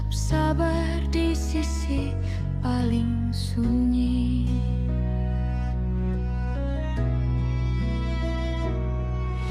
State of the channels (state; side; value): identical; both; correlation 1.00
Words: sabar di sisi paling sunyi.